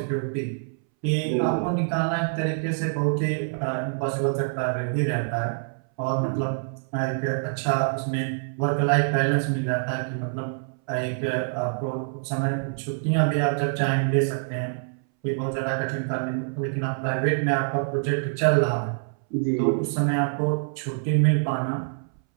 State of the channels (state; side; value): silent; left; 61 dB below the other